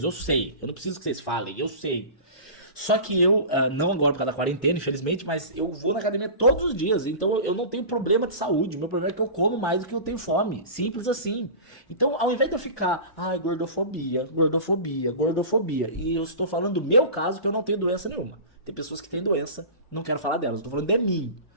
eu sei, eu não preciso que vocês falem, eu sei. Só que eu, não agora por causa da quarentena, infelizmente, mas eu vou na academia todos os dias, então eu não tenho problema de saúde, o meu problema é que eu como mais do que eu tenho fome, simples assim. Então, ao invés de eu ficar, ai, gordofobia, gordofobia, gordofobia, e eu estou falando do meu caso, que eu não tenho doença nenhuma. Tem pessoas que têm doença, não quero falar delas, estou falando de mim.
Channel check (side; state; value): right; late; 1.2 ms